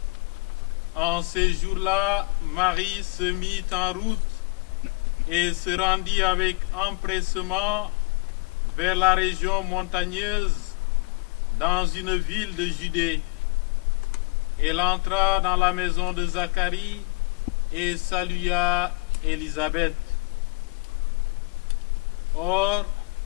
En ces jours-là, Marie se mit en route et se rendit avec empressement vers la région montagneuse dans une ville de Judée. Elle entra dans la maison de Zacharie et salua Élisabeth. Or,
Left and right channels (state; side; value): quieter; right; 28.3 dB